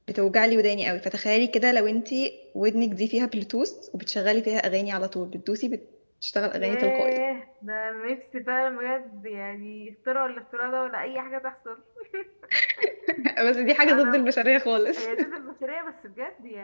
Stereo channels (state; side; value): inverted; both; correlation -1.00